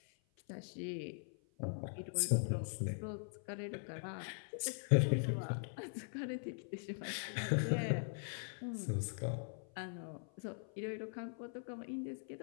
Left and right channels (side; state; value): right; silent; 50 dB below the other